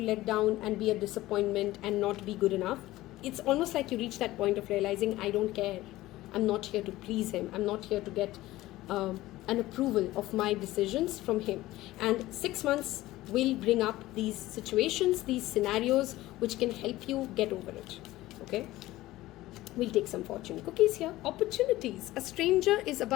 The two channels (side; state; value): right; quieter; 16.9 dB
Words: let down and be a disappointment and not be good enough. It's almost like you reach that point of realizing, I don't care. I'm not here to please him. I'm not here to get an approval of my decisions from him. And 6 months will bring up these situations, these scenarios, which can help you get over it. Okay. We'll take some fortune cookies here. Opportunities. A stranger is